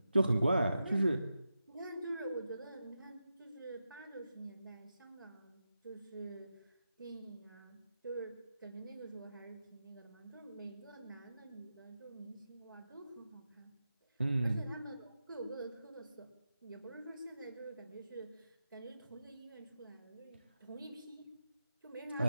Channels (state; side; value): inverted; both; correlation -0.89